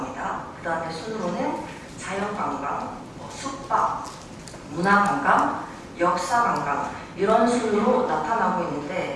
그 다음에 순으로는 자연관광, 숙박, 문화관광, 역사관광 이런 순으로 나타나고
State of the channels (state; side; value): identical; both; correlation 1.00